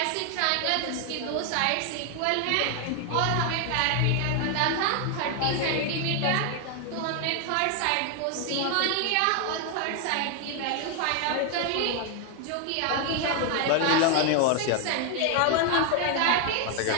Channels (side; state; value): both; different; correlation 0.00